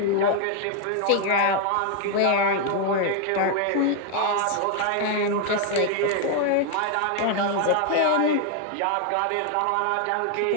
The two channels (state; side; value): different; both; correlation 0.00